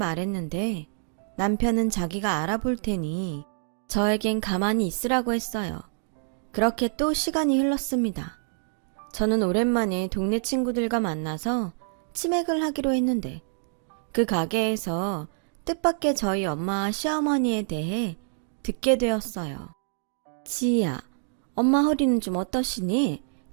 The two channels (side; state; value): left; silent; digital silence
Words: 남편은 자기가 알아볼 테니 저에겐 가만히 있으라고 했어요. 그렇게 또 시간이 흘렀습니다. 저는 오랜만에 동네 친구들과 만나서 치맥을 하기로 했는데 그 가게에서 뜻밖의 저희 엄마와 시어머니에 대해 듣게 되었어요. 지희야, 엄마 허리는 좀 어떠시니?